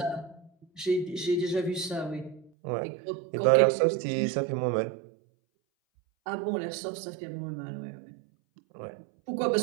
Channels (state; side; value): drops out; left; at 2.5 s